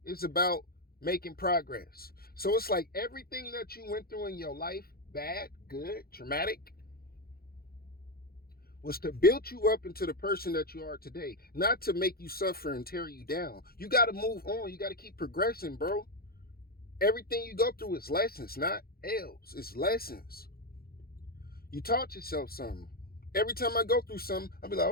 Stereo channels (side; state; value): right; late; 0.44 ms